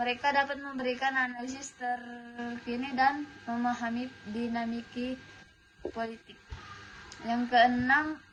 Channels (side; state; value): both; identical; correlation 1.00